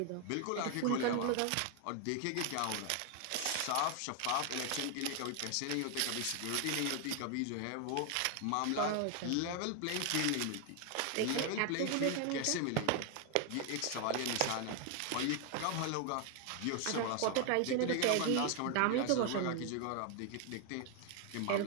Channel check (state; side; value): different; both; correlation 0.00